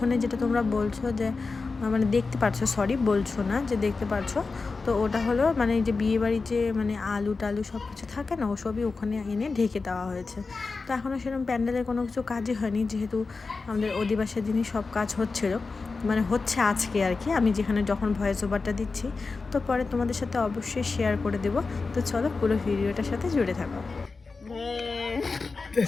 যেটা তোমরা বলছো যে দেখতে পারছো, সরি বলছো না, যে দেখতে পারছো, তো ওটা হলো এই যে বিয়েবাড়ি যে আলু টালু সব কিছু থাকে না, ওসবই ওখানে এনে ঢেকে দেওয়া হয়েছে। তো এখনও সেরকম প্যান্ডেলের কোনো কিছু কাজই হয়নি, যেহেতু আমাদের অধিবাসের দিনই সব কাজ হচ্ছিলো, হচ্ছে আজকে আর কি। আমি যখন ভয়েস ওভারটা দিচ্ছি, তো পরে তোমাদের সাথে অবশ্যই শেয়ার করে দেবো। তো চলো পুরো ভিডিওটার সাথে জুড়ে থাকো।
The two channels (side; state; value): right; quieter; 4.2 dB